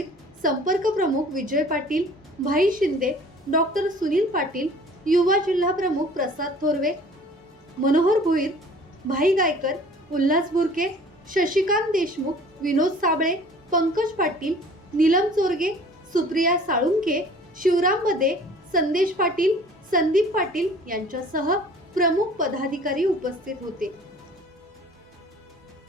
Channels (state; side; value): normal; both; correlation 0.49